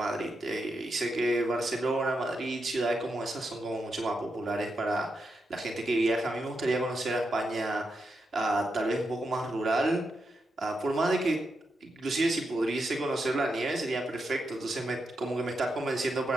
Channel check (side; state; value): both; normal; correlation 0.85